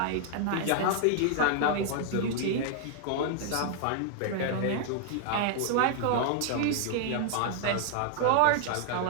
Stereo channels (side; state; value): both; different; correlation 0.00